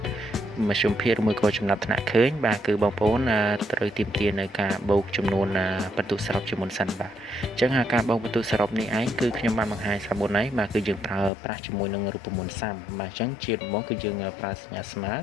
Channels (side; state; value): right; drops out; at 11.3 s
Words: មធ្យមភាគឬមួយក៏ចំណាត់ថ្នាក់ឃើញបាទគឺបងប្អូនត្រូវទាមទារនៅការបូកចំនួនបន្ទុកសរុបជាមុនសិនបាទអញ្ចឹងការបូកបន្ទុកសរុបនេះឯងគឺខ្ញុំបានបង្ហាញស្រាប់មុនហើយបាទគឺយើងប្រើប្រាស់ជាមួយនឹងរូបមន្តសាំបាទអញ្ចឹងជាដំបូងគឺយើងប្រើសញ្ញាស្មើ